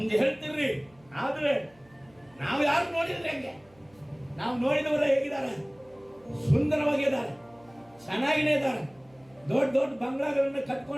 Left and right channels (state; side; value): noise; right; hum, 30 dB below the sound